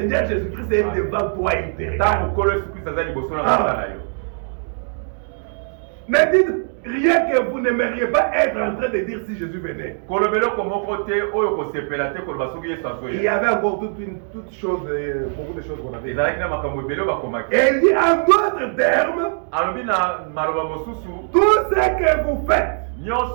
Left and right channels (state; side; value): silent; left; 65 dB below the other